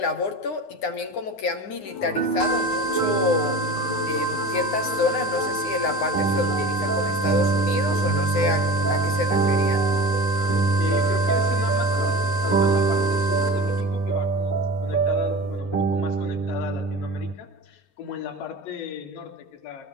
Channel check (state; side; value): late; right; 9.7 ms